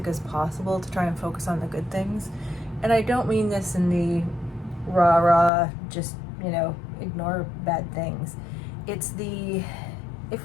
as possible, to try and focus on the good things. And I don't mean this in the rah-rah, just, ignore bad things. It's the if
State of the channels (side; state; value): right; drops out; at 5.5 s